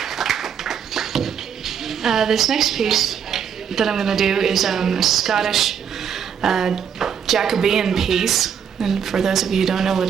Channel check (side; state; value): left; quieter; 7.9 dB